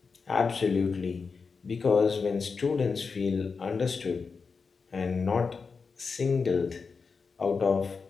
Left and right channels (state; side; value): quieter; right; 5.0 dB